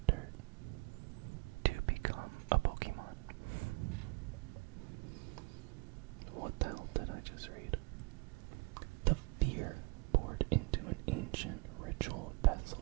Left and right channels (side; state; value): left; quieter; 29.2 dB